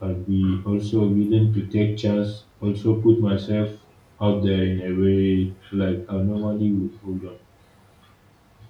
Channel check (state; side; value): identical; both; correlation 1.00